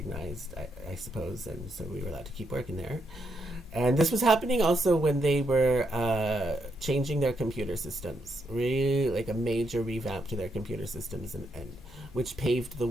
I suppose. And so we were allowed to keep working there. And this was happening also when they were changing their computer systems, really like a major revamp to their computer systems, and which paved the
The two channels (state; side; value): normal; both; correlation 0.79